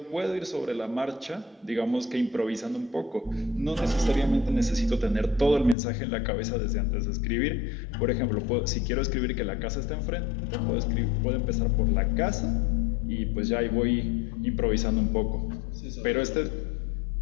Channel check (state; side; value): drops out; right; at 5.8 s